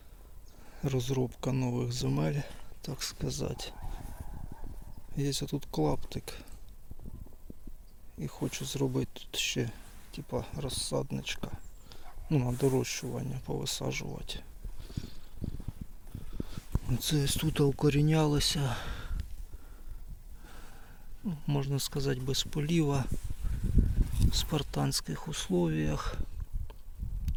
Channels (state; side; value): identical; both; correlation 1.00